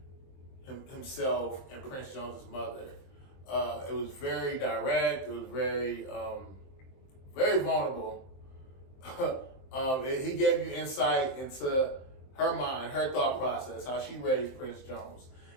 himself and Prince Jones's mother. It was very direct. It was very very vulnerable. He gave you insight into her mind, her thought process, how she raised Prince Jones.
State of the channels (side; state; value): right; late; 23 ms